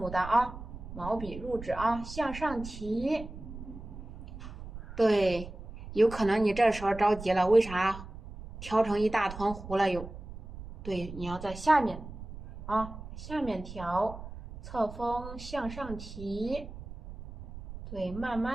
丹啊，毛笔入纸啊，向上提。对，有可能你这时候着急了，为啥调成一大团糊了又？对，你要在下面啊，下面调。侧锋向上提，对，慢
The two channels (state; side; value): noise; right; rumble, 12 dB below the sound